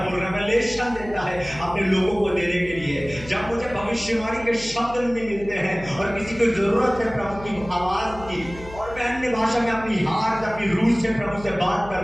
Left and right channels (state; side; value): noise; left; hum, 16 dB below the sound